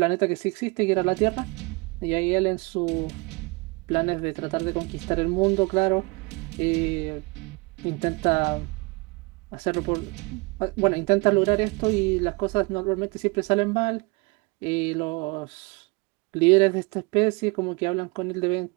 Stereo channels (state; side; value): quieter; left; 27.7 dB